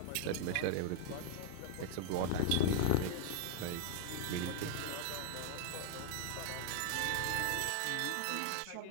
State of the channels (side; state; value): both; different; correlation 0.00